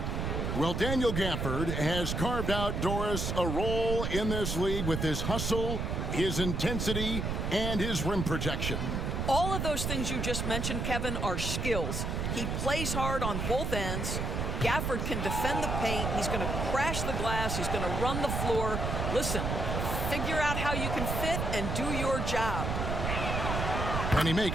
Well, Daniel Gafford has carved out, Doris, a role in this league with his hustle, his intensity, and his rim protection. All of those things you just mentioned, Kevin, are skills. He plays hard on both ends. Gafford can defend the paint. He's going to crash the glass. He's going to run the floor. Listen, figure out how you can fit and do your job. And he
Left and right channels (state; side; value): noise; right; rumble, 1 dB below the sound